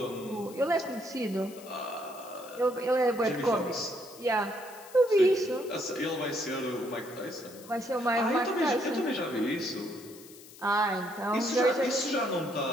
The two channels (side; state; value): left; noise; hiss, 19 dB below the sound